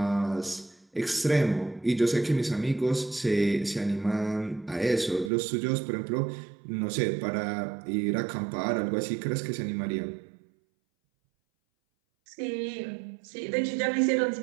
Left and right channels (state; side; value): drops out; left; at 5.3 s